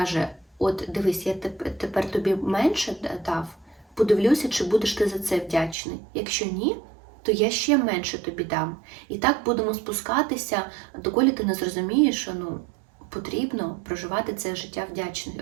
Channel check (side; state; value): left; drops out; at 5.8 s